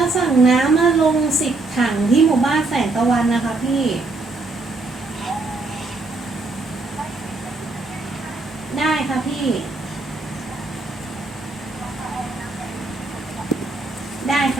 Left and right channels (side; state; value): left; quieter; 3.3 dB